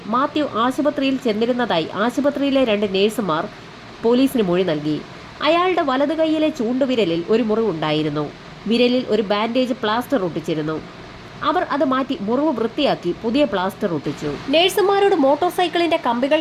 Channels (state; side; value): identical; both; correlation 1.00